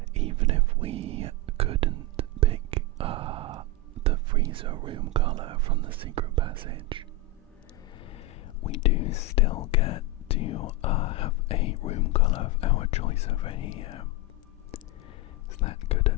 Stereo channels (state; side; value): normal; both; correlation 0.08